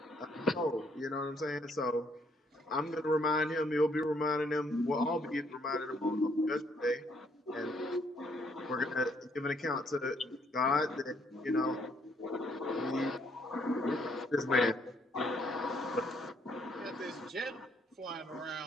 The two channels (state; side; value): normal; both; correlation 0.68